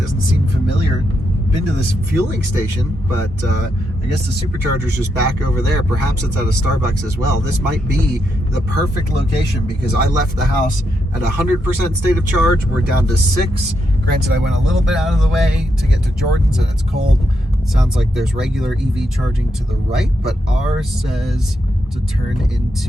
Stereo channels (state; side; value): normal; both; correlation 0.82